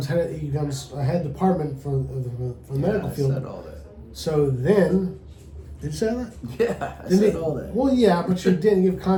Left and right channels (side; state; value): both; identical; correlation 1.00